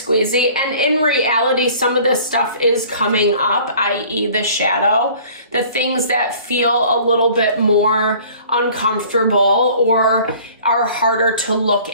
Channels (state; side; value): inverted; both; correlation -0.50